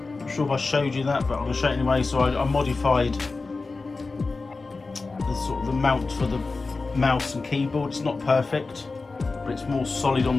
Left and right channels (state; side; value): quieter; right; 3.9 dB